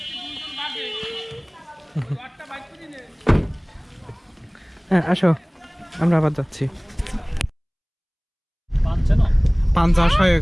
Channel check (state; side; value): identical; both; correlation 1.00